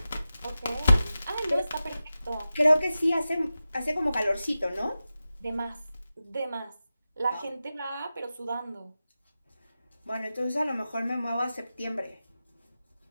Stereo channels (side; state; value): both; inverted; correlation -0.93